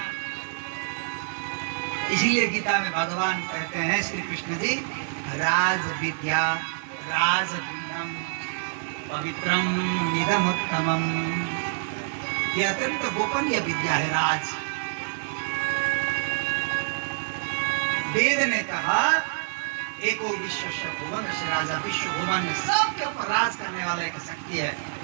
इसीलिए गीता में भगवान कहते हैं श्री कृष्ण जी, राज विद्या राजगुह्यम पवित्रम इदमुत्तमम। यह अत्यंत गोपनीय विद्या है राज। वेद ने कहा, एको विश्वस्य भुवनस्य राजा, विश्व भुवन में सबके ऊपर राज करने वाला एक शक्ति है,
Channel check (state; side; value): silent; left; digital silence